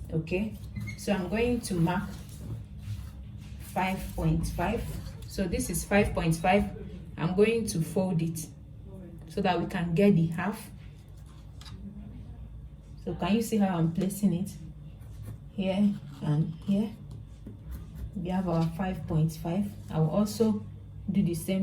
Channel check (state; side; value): identical; both; correlation 1.00